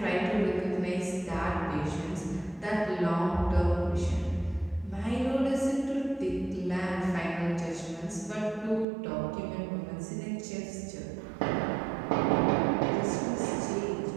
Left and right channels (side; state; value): left; drops out; at 8.8 s